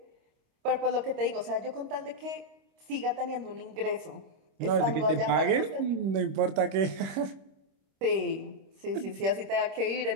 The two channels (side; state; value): left; late; 26 ms